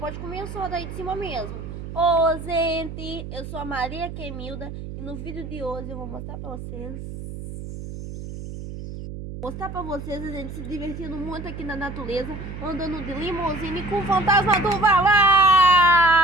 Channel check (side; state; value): right; noise; hum, 9 dB below the sound